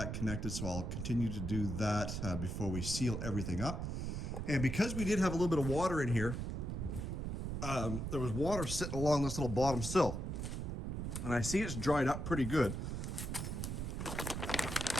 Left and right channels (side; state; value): right; noise; rumble, 3 dB below the sound